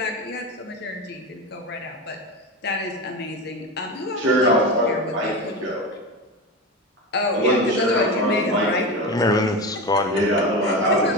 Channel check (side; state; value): both; normal; correlation 0.23